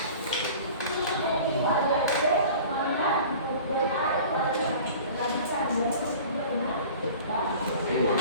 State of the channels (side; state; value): both; inverted; correlation -0.42